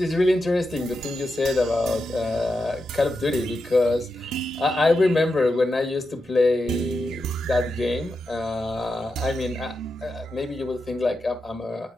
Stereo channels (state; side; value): normal; both; correlation 0.88